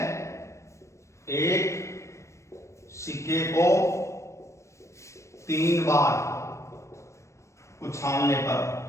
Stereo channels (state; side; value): late; right; 0.14 ms